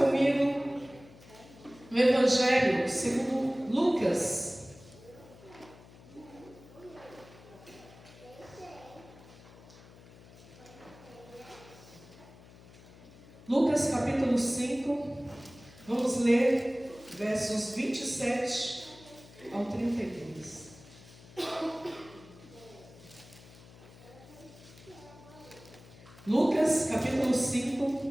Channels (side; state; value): left; noise; hum, 21 dB below the sound